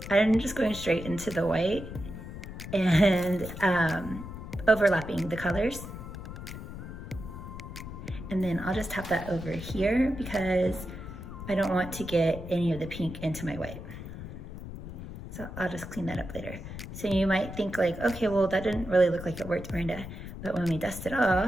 I'm just going straight into the white and overlapping the colors. And then I'll just tap that over here because I don't want to get any of the pink into my white. So I'll just clean that up later. So you might think like, okay, well that didn't really look like it worked, Miranda. But when we dust it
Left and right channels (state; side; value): noise; left; rumble, 10 dB below the sound